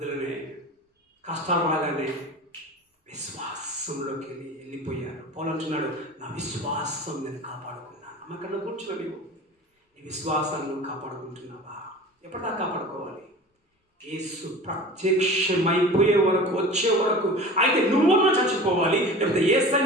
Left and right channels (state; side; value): normal; both; correlation 0.38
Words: కష్టాలు రాగానే విశ్వాసంలోకి వెళ్ళిపోయారు. పౌలు అంటున్నాడు, నా విశ్వాసం నేను కాపాడుకున్నాను. అమ్మకన్నా కూర్చోని నీ విశ్వాసాన్ని కాపాడుకుంటున్నావా? ఎప్పటిదాకా కాపాడుకోవాలి? యేసు ప్రత్యక్షమైపోయే వరకు, వచ్చే వరకు. అయితే నువ్వున్నా చచ్చిపోవాలి, లేకపోతే